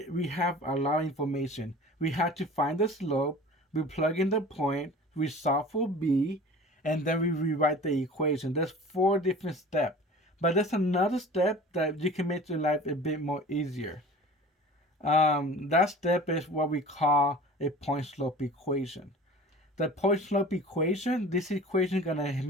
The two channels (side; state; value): both; normal; correlation 0.41